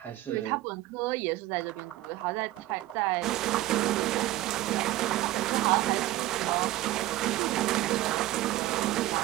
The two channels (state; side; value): quieter; left; 15.8 dB